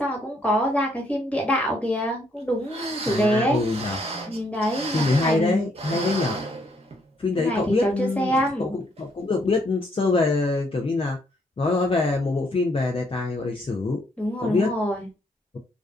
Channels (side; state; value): both; normal; correlation 0.71